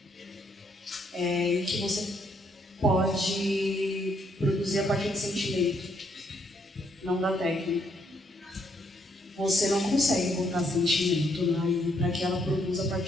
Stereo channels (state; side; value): normal; both; correlation 0.72